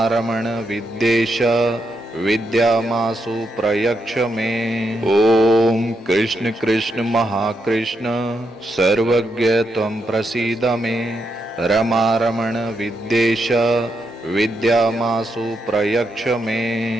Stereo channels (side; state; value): both; normal; correlation 0.81